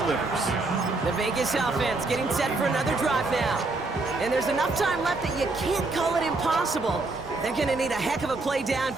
The Vegas offense getting set for another drive now. And there's enough time left that you can't call it impossible. They're going to need a heck of a play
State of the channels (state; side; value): quieter; left; 3.4 dB